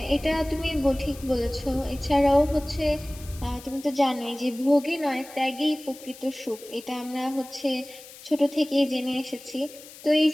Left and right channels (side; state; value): left; noise; hiss, 18 dB below the sound